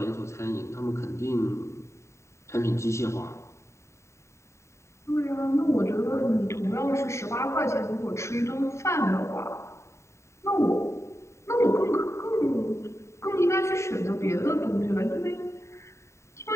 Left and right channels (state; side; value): late; right; 0.14 ms